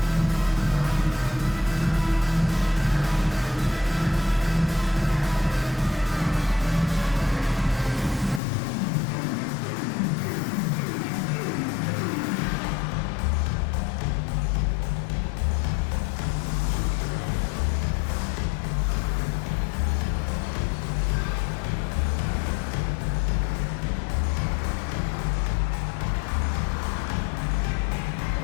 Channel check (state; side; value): drops out; right; at 8.4 s